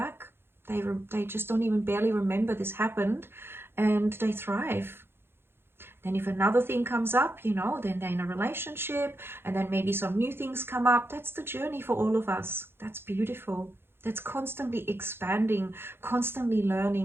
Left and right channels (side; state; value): left; late; 0.11 ms